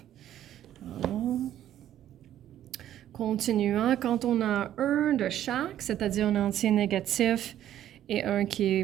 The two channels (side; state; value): left; quieter; 11.8 dB